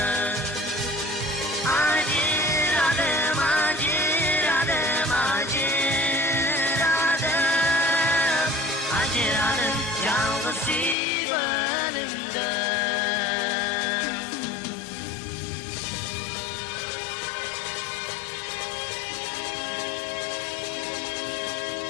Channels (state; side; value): drops out; right; at 11.0 s